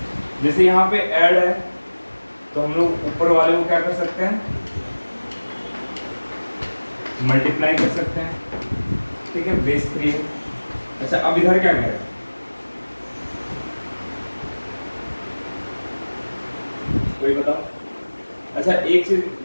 जैसे यहाँ पे ऐड है तो हम लोग ऊपर वाले को क्या कर सकते हैं मल्टीप्लाई कर सकते हैं, ठीक है, बेस 3 है। अच्छा अब इधर क्या करें, कोई बताओ। अच्छा एक चीज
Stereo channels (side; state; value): both; inverted; correlation -1.00